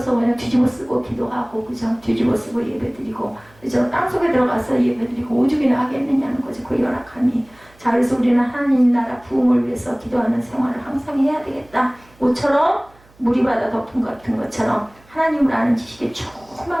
그냥 뒤집어 쓰고 기도하고 그죠? 뒤집어 쓰고 예배 드리고 그죠? 땅속에 들어가서 예배 드리고 오죽이나 하겠느냐는 거죠. 그 열악함이. 자, 그래서 우리는 하나님 나라 부흥을 위해서 기도하는 생활을 항상 해야 되겠다. 모처럼 물이 바다 덮은 같은 것처럼 하나님을 아는 지식에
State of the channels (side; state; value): right; noise; hum, 29 dB below the sound